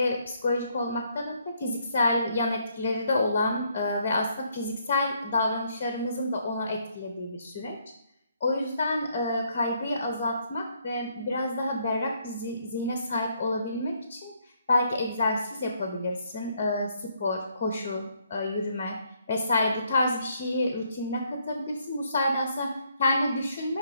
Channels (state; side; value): inverted; both; correlation -0.70